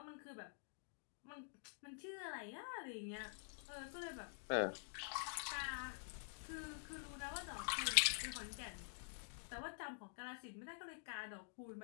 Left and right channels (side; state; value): right; silent; digital silence